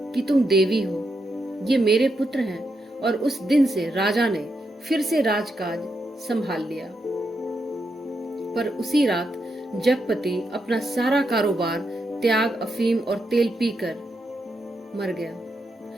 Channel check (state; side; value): normal; both; correlation 0.83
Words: कि तुम देवी हो, ये मेरे पुत्र हैं। और उस दिन से राजा ने फिर से राजकाज संभाल लिया। पर उसी रात जगपति अपना सारा कारोबार त्याग, अफीम और तेल पीकर मर गया,